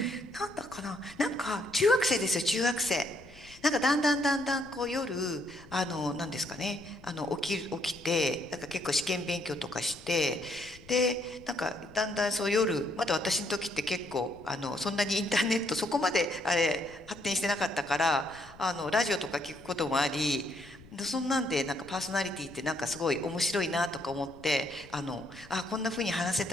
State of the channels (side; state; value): left; noise; rumble, 22 dB below the sound